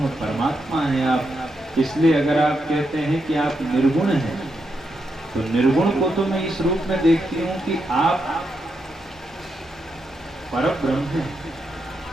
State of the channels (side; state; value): both; normal; correlation 0.83